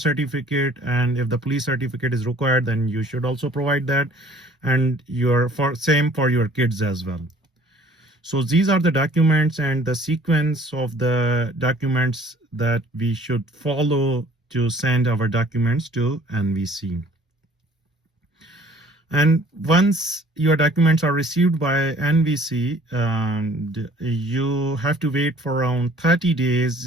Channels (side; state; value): both; normal; correlation 0.53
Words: certificate, and if the police certificate is required, then you should also provide that. And same for your kids as well. So these are the documents and the sequence of the documents that we should follow to send our documents to NVC. And once your documents are received by NVC, and you have to wait for around 30